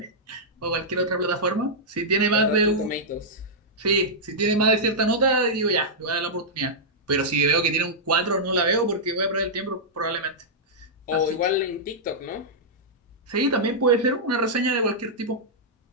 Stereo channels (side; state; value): both; normal; correlation -0.09